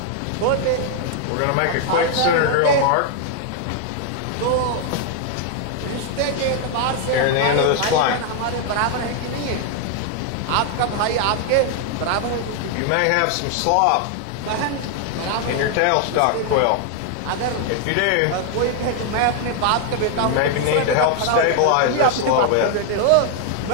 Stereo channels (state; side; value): different; both; correlation 0.00